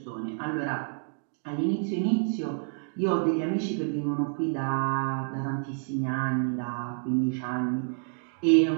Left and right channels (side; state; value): left; silent; 59 dB below the other